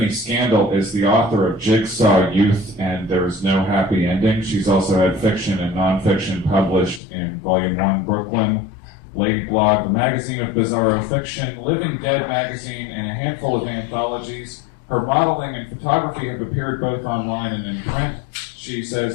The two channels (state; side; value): drops out; right; at 7.0 s